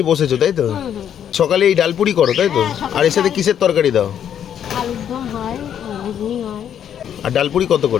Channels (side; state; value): right; quieter; 9.3 dB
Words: বসেছো, তাই তো? সকালে এই ডালপুরি করো, তাই তো? আর এর সাথে কিসের তরকারি দাও? আর ডালপুরি কত